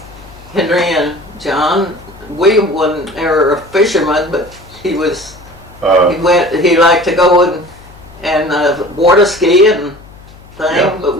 Henry and John. William wasn't ever a fisherman, but he was. He liked to go and water ski and thing. Yeah. But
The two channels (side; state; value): left; noise; hum, 22 dB below the sound